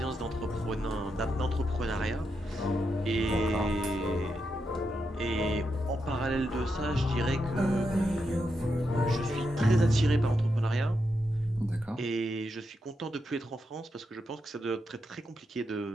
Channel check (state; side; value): normal; both; correlation 0.84